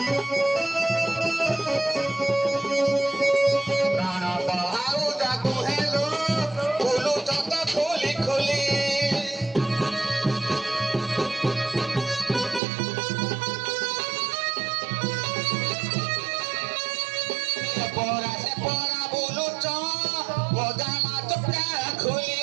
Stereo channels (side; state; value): left; drops out; at 12.6 s